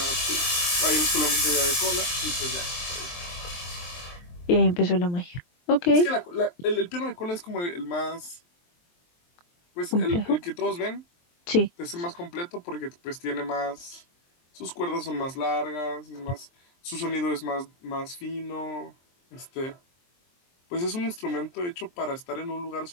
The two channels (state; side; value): late; right; 23 ms